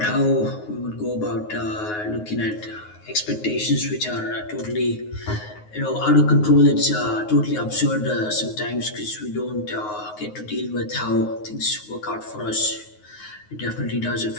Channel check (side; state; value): right; late; 9.5 ms